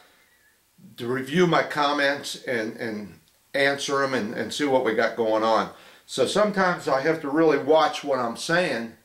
review my comments and answer them and see what we got going on. So sometimes I have to really watch what I'm saying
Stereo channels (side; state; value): both; identical; correlation 1.00